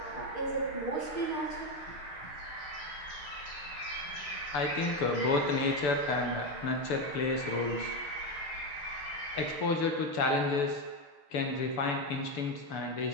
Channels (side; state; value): right; late; 6.9 ms